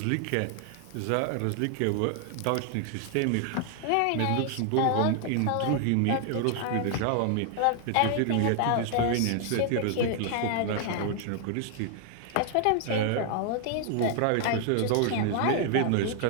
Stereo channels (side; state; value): both; different; correlation 0.00